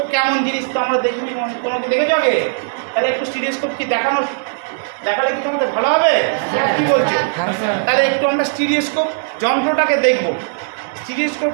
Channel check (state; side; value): silent; left; digital silence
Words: কেমন জিনিস, তো আমরা দেখিনি, কোনো কি দেখেছ আগে? তাহলে একটু স্টিরিওস্কোপ কি দেখালে কি তোমাদের ভালো হবে? কি বলছো? হ্যাঁ স্যার। তাহলে একটু আমরা স্টিরিওস্কোপ যন্ত্রটাকে দেখব। স্টিরিওস্কোপ